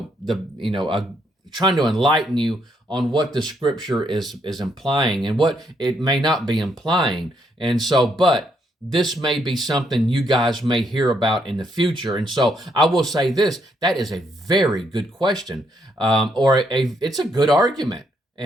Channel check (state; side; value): normal; both; correlation 0.74